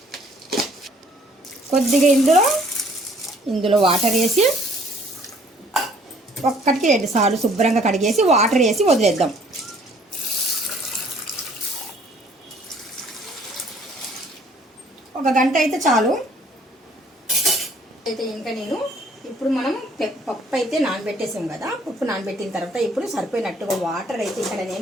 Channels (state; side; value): normal; both; correlation 0.59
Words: కొద్దిగా ఇందులో వాటర్ వేసి ఒక్కటికి 2 సార్లు శుభ్రంగా కడిగేసి వాటర్ వేసి వదిలేద్దాం. ఒక గంట అయితే చాలు. అయితే ఇంకా నేను ఇప్పుడు మనం పప్పు అయితే నానబెట్టేసాం కదా. పప్పు నానబెట్టిన తర్వాత ఇప్పుడు సరిపోయినట్టుగా వాటర్ అయితే ఇక్కడ